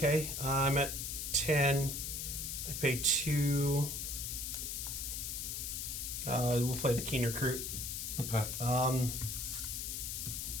I'm at 10. I pay 2. We'll play the Keen Recruit. Okay.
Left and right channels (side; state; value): left; noise; hiss, 4 dB below the sound